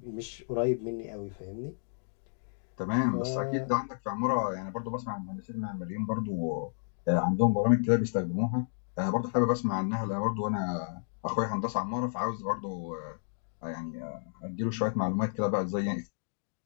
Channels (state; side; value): silent; right; digital silence